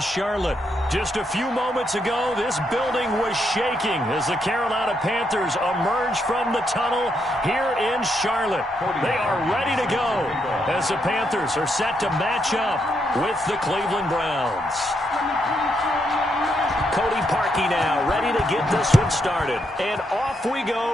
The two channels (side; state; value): both; normal; correlation 0.78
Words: Just a few moments ago, this building was shaking as the Carolina Panthers emerge from the tunnel here in Charlotte. They are ready to go as the Panthers are set to match up with the Cleveland Browns. Cody Parkey now ready to get this one started. And off we